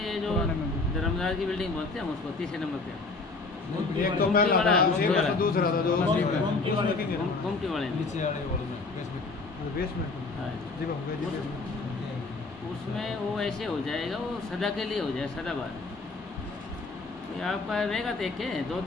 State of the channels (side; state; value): right; quieter; 3.7 dB